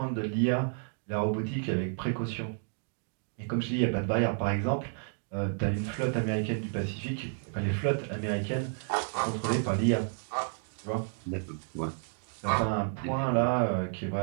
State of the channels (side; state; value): left; silent; 56 dB below the other